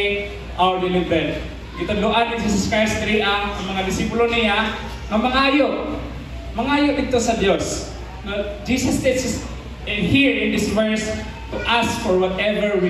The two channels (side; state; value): both; identical; correlation 1.00